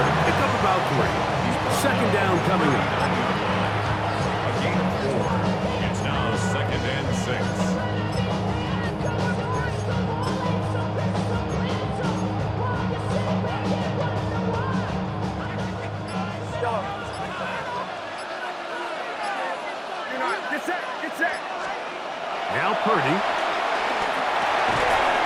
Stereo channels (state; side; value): identical; both; correlation 1.00